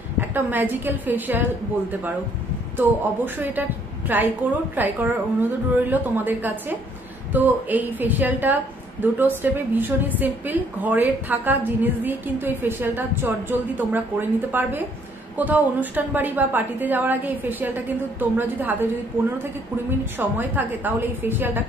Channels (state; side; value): normal; both; correlation 0.65